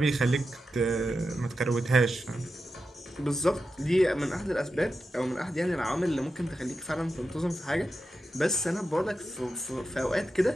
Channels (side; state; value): both; normal; correlation 0.90